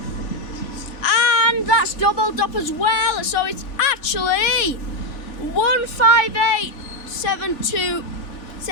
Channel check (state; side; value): late; right; 3.4 ms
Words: And that's doubled up as well, so it's actually